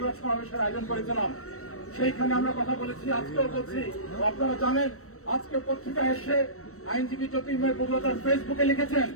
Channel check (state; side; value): late; right; 0.64 ms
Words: সমাবেশের আয়োজন করেছিলাম। সেইখানে আমরা কথা বলেছি, আজকেও বলছি। আপনারা জানেন, আজকে পত্রিকায় এসে আইনজীবী জ্যোতির্ময় বগুড়া তার ফেসবুকে লিখেছেন,